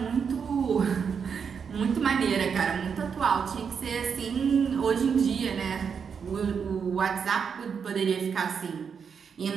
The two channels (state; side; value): quieter; left; 6.5 dB